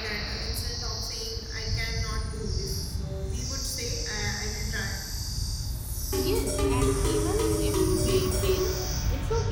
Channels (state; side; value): identical; both; correlation 1.00